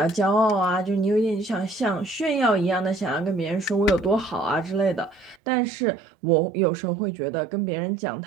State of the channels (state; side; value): drops out; left; at 5.4 s